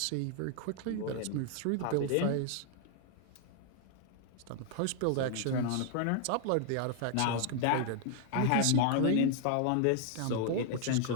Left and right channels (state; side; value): different; both; correlation 0.00